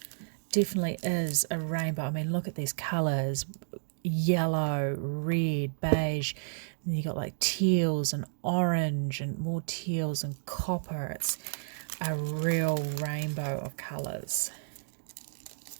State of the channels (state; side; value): silent; left; digital silence